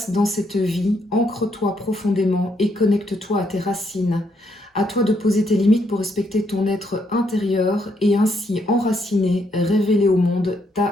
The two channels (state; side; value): normal; both; correlation 0.74